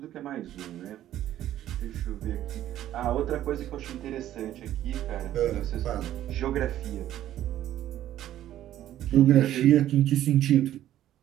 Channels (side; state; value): left; quieter; 12.6 dB